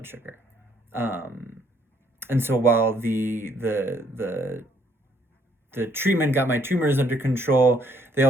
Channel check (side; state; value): both; normal; correlation 0.67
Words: sugar. Um, and so while the treatment got my tumors under control, they